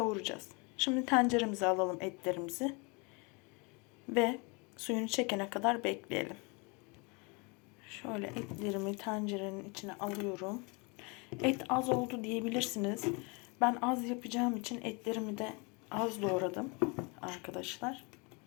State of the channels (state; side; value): quieter; right; 30.5 dB